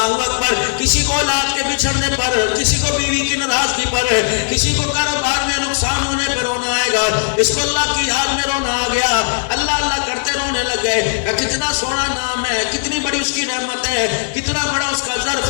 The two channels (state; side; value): silent; right; 60 dB below the other